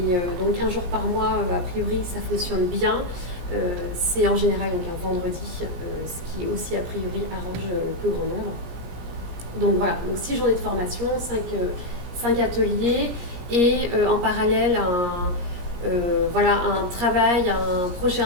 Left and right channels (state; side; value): late; left; 17 ms